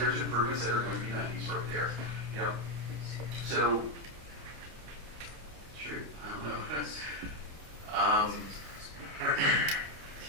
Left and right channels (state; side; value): late; left; 28 ms